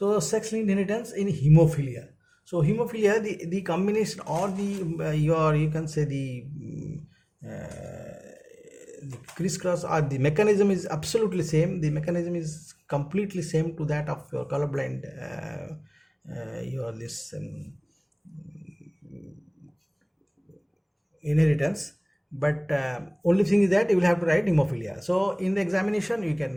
sex-linked inheritance in hemophilia. So hemophilia, the combination or the you can say the crisscross or the mechanism is absolutely same. The mechanism is completely same to that of your colorblind inheritance, but only thing is that you will have to write hemophilia. So in the examination you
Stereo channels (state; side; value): identical; both; correlation 1.00